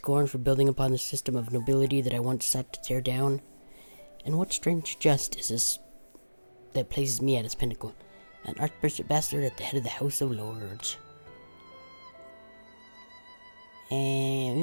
for building upon the system of nobility that I once sought to tear down? And what strange jest is this that places me at its pinnacle, an archbishop bastard at the head of the House of Lords?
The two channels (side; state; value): both; inverted; correlation -1.00